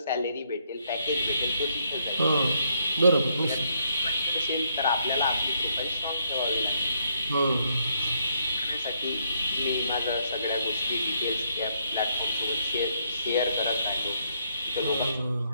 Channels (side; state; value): both; inverted; correlation -0.73